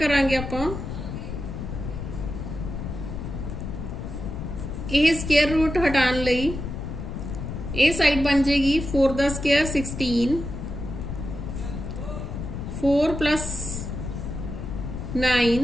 आपां। यह स्केयर रूट हटाने लई ये साइड बन जाएगी 4 दा square 16, 4 plus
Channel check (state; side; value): noise; left; rumble, 6 dB below the sound